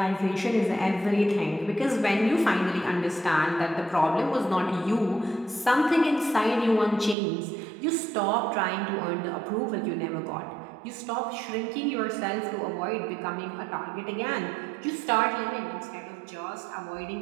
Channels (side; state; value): left; drops out; at 7.2 s